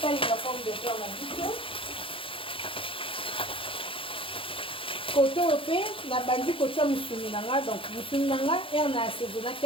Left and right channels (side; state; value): right; late; 0.26 ms